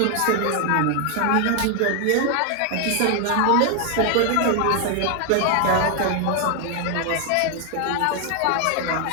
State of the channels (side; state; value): both; different; correlation 0.00